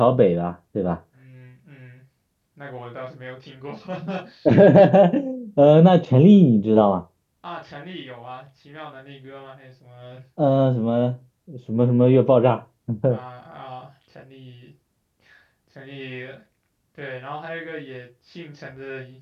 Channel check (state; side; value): identical; both; correlation 1.00